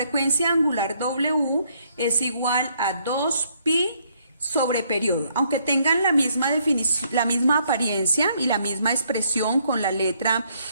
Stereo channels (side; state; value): both; inverted; correlation -0.69